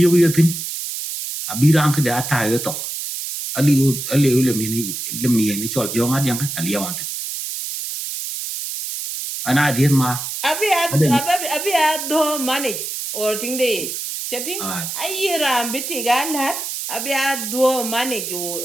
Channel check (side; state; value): right; noise; hiss, 5 dB below the sound